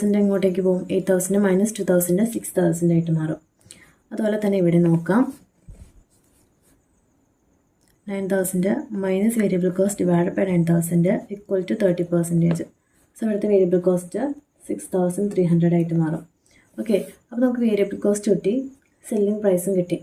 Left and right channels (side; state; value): both; identical; correlation 1.00